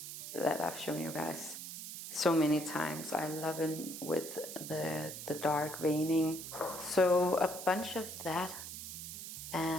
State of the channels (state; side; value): noise; right; hiss, 8 dB below the sound